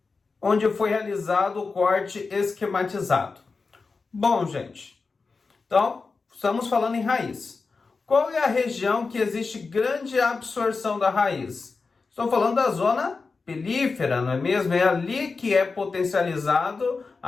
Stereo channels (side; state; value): right; quieter; 4.4 dB